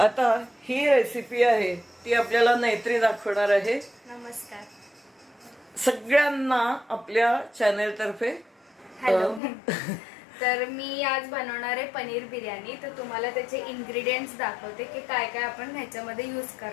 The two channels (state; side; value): drops out; right; at 9.4 s